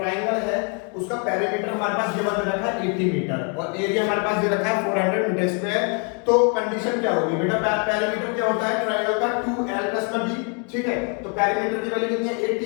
है, उसका पेरीमीटर हमारे पास ये बता रखा है 80 मीटर, और एरिया हमारे पास दे रखा है 400 मीटर स्क्वायर। तो कंडीशन क्या होगी बेटा, पेरीमीटर क्या होता है ट्राइंगल का 2l + b, ठीक है। तो पेरीमीटर की वैल्यू कितनी है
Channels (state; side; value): quieter; right; 35.0 dB